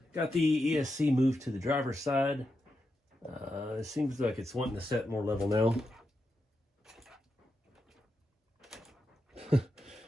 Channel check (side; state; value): both; normal; correlation 0.87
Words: got the ESC moved to the driver's side. It seems like it's wanting to set more level now.